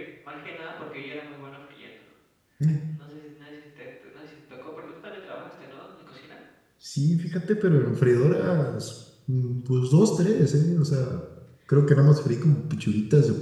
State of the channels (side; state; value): both; identical; correlation 1.00